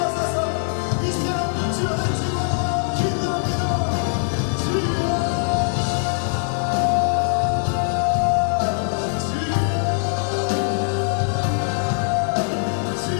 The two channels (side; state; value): right; silent; digital silence